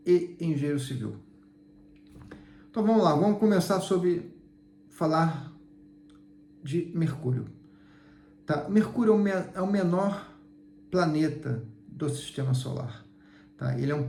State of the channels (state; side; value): identical; both; correlation 1.00